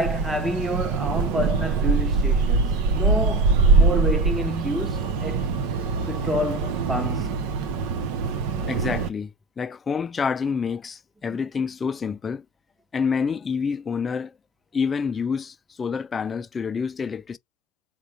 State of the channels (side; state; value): both; normal; correlation 0.32